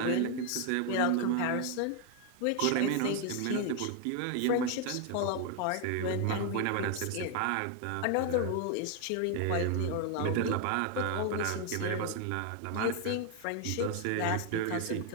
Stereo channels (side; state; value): both; different; correlation 0.00